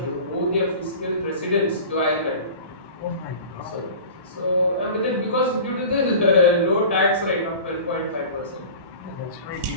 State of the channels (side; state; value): both; inverted; correlation -0.38